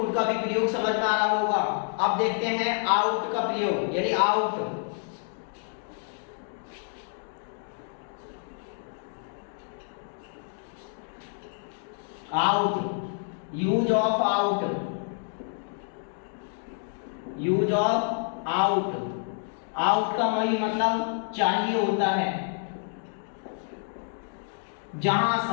का भी प्रयोग समझ में आ रहा होगा। अब देखते हैं आउट का प्रयोग, यानी out. Out, use of out, use of out. Out का वही मतलब चाहिए होता है, जहां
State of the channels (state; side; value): silent; right; 59 dB below the other